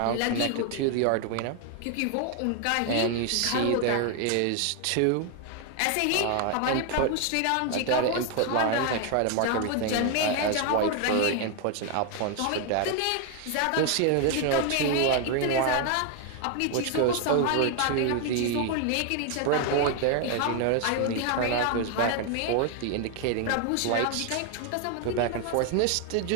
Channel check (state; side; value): different; both; correlation 0.01